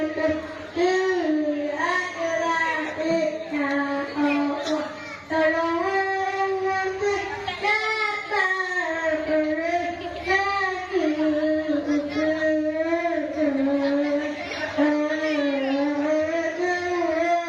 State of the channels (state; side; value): identical; both; correlation 1.00